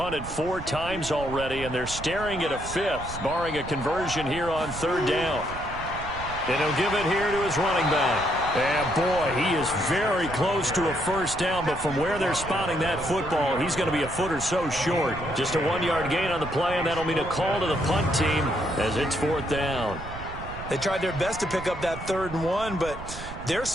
4 times already, and they're staring at a 5th, barring a conversion here on 3rd down. And he'll give it here to his running back. And, boy, he is very close to a 1st down, but from where they're spotting that football, he's going to be a foot or so short. Just a 1-yard gain on the play, and that'll mean a call to the punt team as it's 4th down. They tried their best to pick up that 3rd and 1, but their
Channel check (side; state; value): right; noise; rumble, 11 dB below the sound